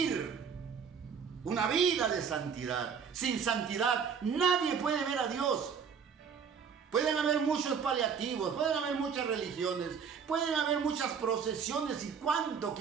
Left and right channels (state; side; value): quieter; left; 6.6 dB